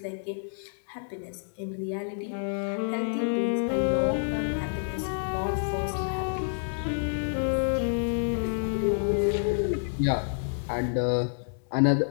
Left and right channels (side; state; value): right; silent; 59 dB below the other